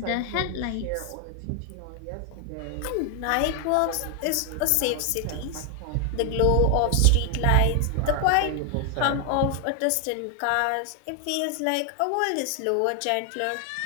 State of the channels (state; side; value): different; both; correlation 0.00